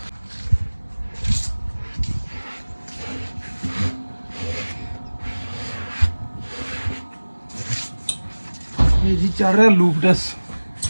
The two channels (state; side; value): inverted; both; correlation -1.00